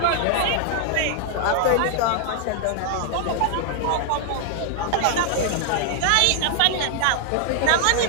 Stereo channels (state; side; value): different; both; correlation 0.00